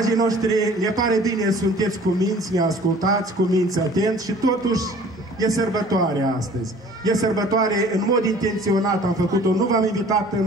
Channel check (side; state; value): both; normal; correlation 0.50